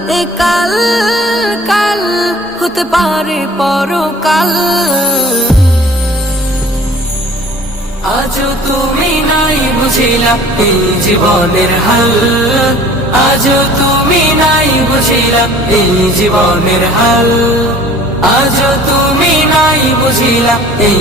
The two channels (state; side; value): normal; both; correlation 0.48